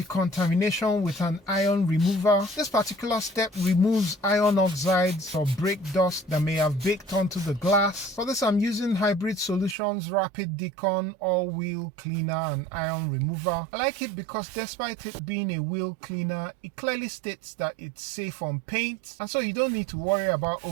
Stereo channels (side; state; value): left; drops out; at 9.8 s